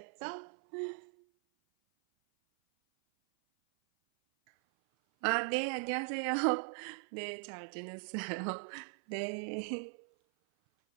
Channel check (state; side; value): silent; left; 52 dB below the other